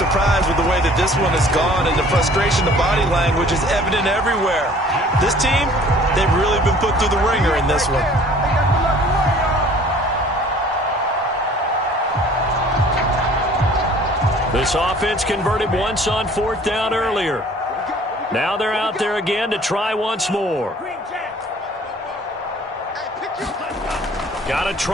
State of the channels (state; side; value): normal; both; correlation 0.52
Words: with the way that this one has gone, and the frustration, the body language is evident everywhere. This team, they've really been put through the ringer in this one. This offense converted once on 4th down earlier. Now they're out there again to try once more. Got to